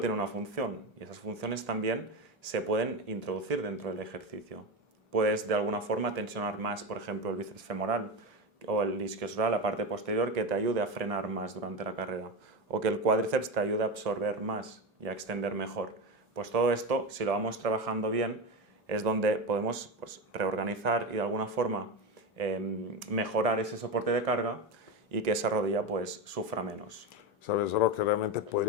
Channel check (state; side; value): normal; both; correlation 0.17